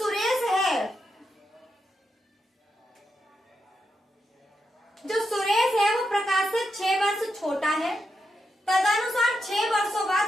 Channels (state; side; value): normal; both; correlation 0.85